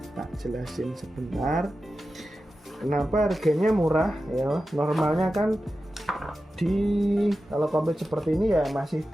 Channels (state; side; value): normal; both; correlation 0.92